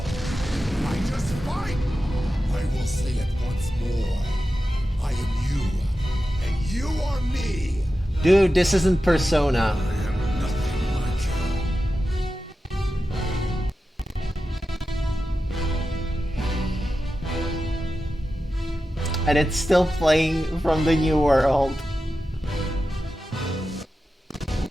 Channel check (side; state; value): both; normal; correlation 0.92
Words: I just fight. I will say it once more. I am you. And you are me. Dude, this isn't Persona. I am nothing like you. And it's still playing from the new world.